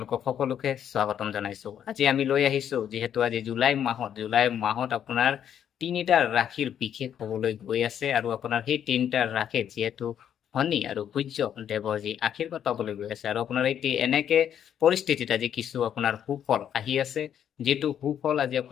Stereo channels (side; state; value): right; quieter; 9.4 dB